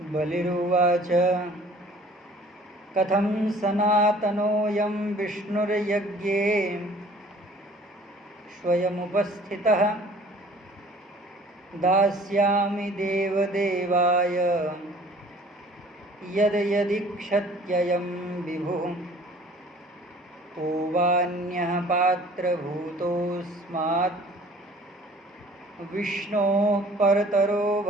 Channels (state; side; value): normal; both; correlation 0.51